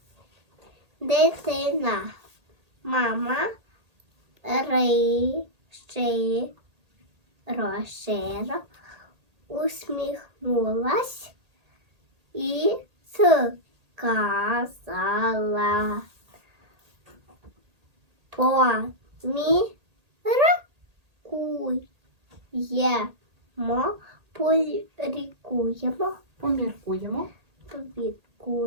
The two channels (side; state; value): left; late; 1.8 ms